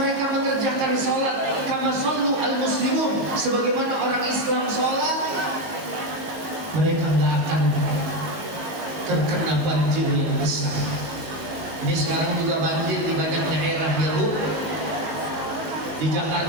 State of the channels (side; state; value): left; late; 18 ms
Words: mengerjakan sholat kama shollu al muslimun, sebagaimana orang Islam sholat, mereka nggak akan terkena banjir yang besar. Ini sekarang juga banjir di banyak daerah ya Bu. Di